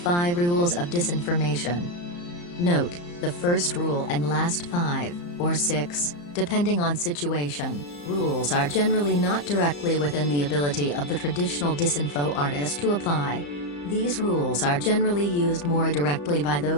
Rules of Disinformation. Note, the first rule and last 5, or 6, depending on situation, rules are generally not directly within the ability of the traditional disinfo artist to apply. These rules are generally used more directly by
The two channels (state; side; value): late; right; 34 ms